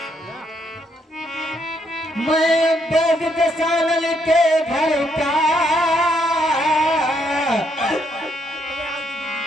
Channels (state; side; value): normal; both; correlation 0.73